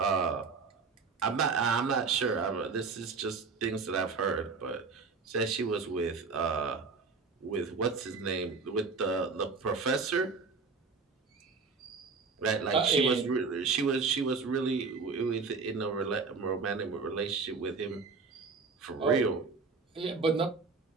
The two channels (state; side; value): quieter; left; 4.6 dB